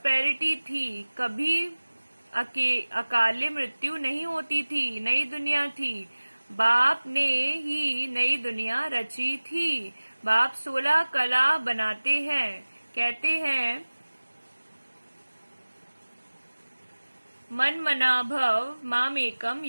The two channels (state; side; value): inverted; both; correlation -1.00